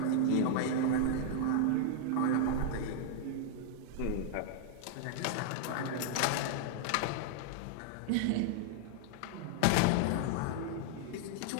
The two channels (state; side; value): different; both; correlation -0.01